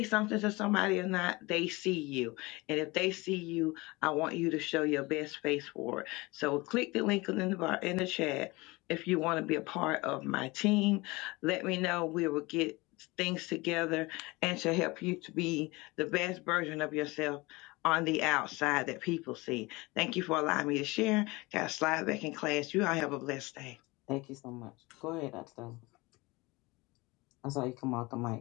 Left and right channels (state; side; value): quieter; right; 23.3 dB